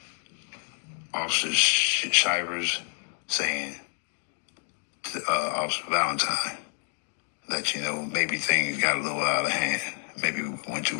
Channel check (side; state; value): right; silent; digital silence